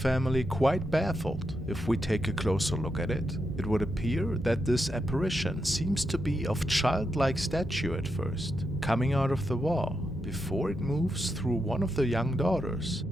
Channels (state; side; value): normal; both; correlation 0.85